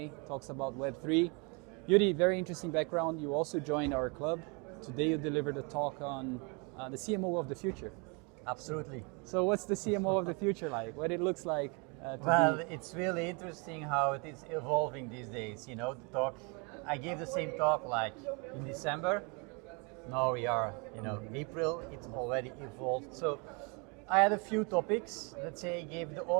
talks about Web3. Joeri, very interesting background. You also joined our club. Today you delivered a talk on the CMO of the future. Absolutely. So what's the CMO of the future like? What it looks like? Well, it's really interesting how it is evolving these days. You know, the talk, I gave the same talk like in December. Now we are, April, it's already evolved. So I had a few topics, let's say, gave the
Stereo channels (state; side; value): quieter; left; 32.1 dB